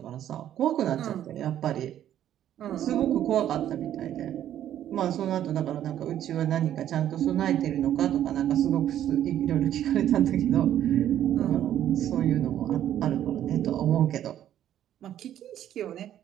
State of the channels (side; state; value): left; quieter; 11.2 dB